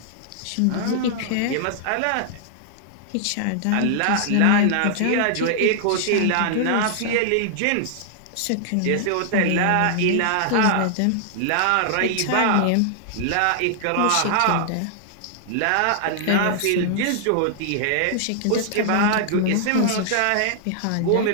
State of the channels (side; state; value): both; different; correlation -0.01